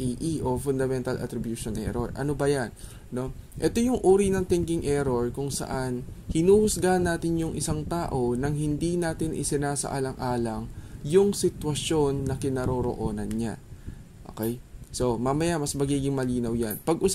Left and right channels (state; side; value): identical; both; correlation 1.00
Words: o Fundamental Attribution Error. Ano ba yan? No? Ito yung uri ng thinking error kung saan hinuhusgahan natin yung isang tao nang hindi natin isinasaalang-alang yung sitwasyon na kinaroroonan niya. Okay? So, mamaya mas magiging malinaw yan.